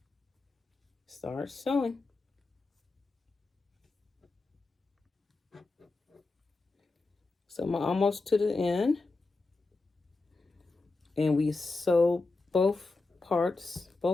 start sewing. So I'm almost to the end. And we sew both parts,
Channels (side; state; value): right; quieter; 3.4 dB